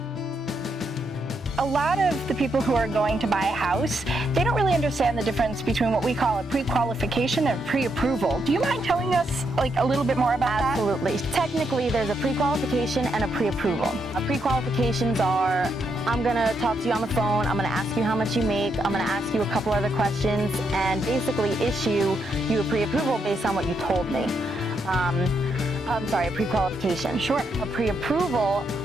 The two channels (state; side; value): normal; both; correlation 0.79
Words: A lot of the people who are going to buy a house, they don't really understand the difference between what we call a pre-qualification and pre-approval. Do you mind telling us a little bit more about that? Absolutely. Technically, there's a pre-qualification and a pre-approval. Pre-qualifications are, I'm going to talk to you on the phone, I'm going to ask you how much you make, I'm going to ask you a couple other questions, and basically issue you a pre-approval based on what you told me. I'm sorry, a pre-qualification. Sure. A pre-approval